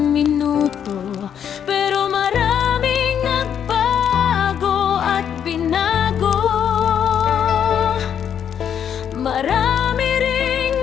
minuto. Pero maraming nagbago at binago. Marami ring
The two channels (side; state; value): right; quieter; 8.6 dB